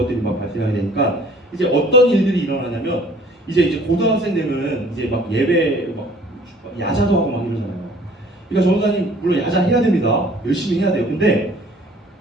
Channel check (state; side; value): normal; both; correlation 0.54